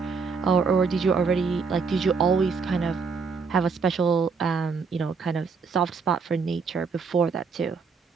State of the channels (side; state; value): left; quieter; 5.2 dB